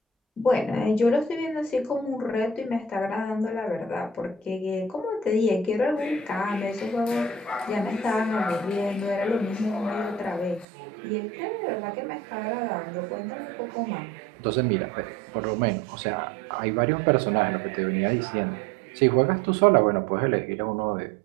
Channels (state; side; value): drops out; left; at 10.7 s